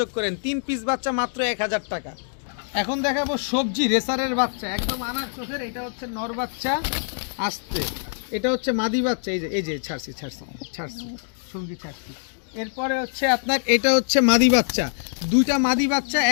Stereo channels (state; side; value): silent; right; digital silence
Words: করেন। 3 পিস বাচ্চা মাত্র 1000 টাকা। এখন দেখাবো সবজি রেসারের বাচ্চা, একদম আনার চোখের। এটা হচ্ছে নর বাচ্চা, আসতে এটা হচ্ছে মাদি বাচ্চা। এই যে ছাড়ছি সঙ্গী ছাড়ছি। এরপরে হচ্ছে আপনার এটা হচ্ছে মাদি বাচ্চা, 2টা মাদি বাচ্চা,